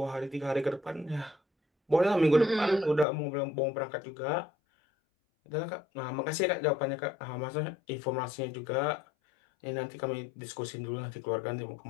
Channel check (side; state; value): right; drops out; at 3.1 s